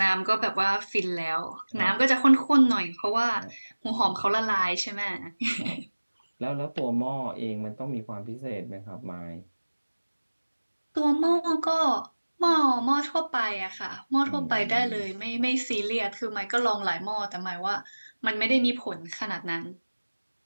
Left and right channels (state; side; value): inverted; both; correlation -1.00